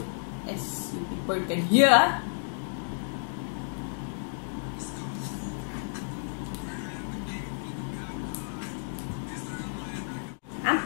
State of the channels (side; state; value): right; silent; digital silence